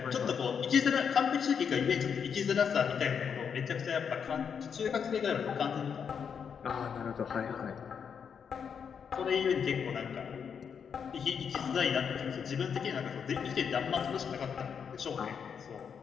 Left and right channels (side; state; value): right; quieter; 7.0 dB